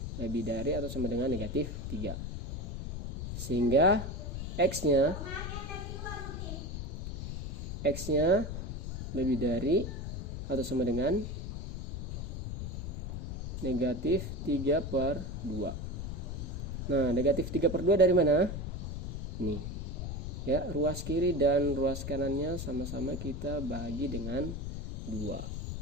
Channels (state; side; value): noise; left; rumble, 5 dB below the sound